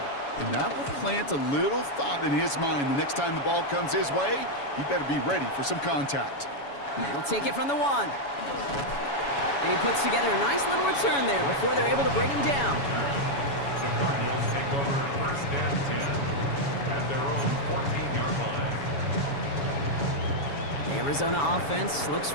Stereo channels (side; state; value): right; late; 7.1 ms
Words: And that will plant a little thought in his mind. The next time the ball comes his way, he better be ready for some contact. He'll take it from the one. And he puts together a nice little return there before they're able to bring him down. The Cardinals take over first and 10 at their own 14-yard line. The Arizona offense looks